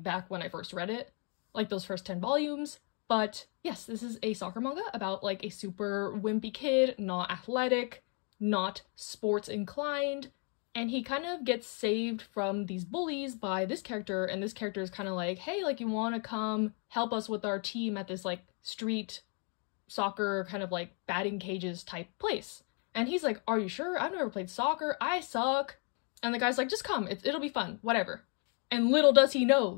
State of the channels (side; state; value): right; quieter; 37.3 dB